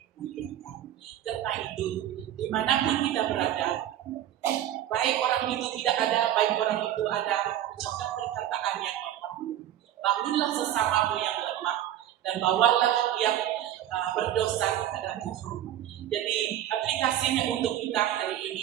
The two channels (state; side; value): quieter; left; 11.9 dB